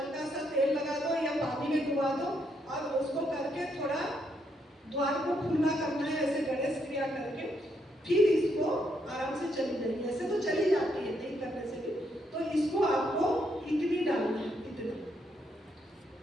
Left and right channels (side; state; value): both; normal; correlation 0.76